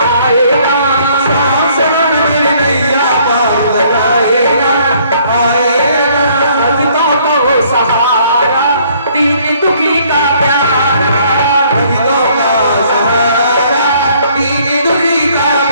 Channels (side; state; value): both; inverted; correlation -0.62